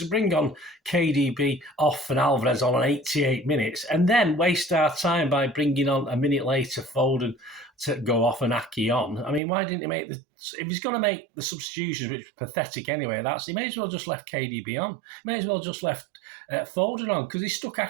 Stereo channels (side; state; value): left; drops out; at 9.4 s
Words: bring on KDB off and Alvarez on 88 minutes and then waste our time by bringing on a minute later Foden to go off and Aki on. I mean, why didn't he make if he's going to make the substitutions, which is pathetic anyway, he may as well just left KDB on. He may as well just left Foden on because he stuck